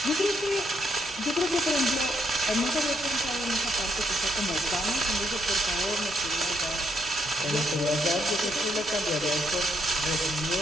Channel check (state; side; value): normal; both; correlation 0.75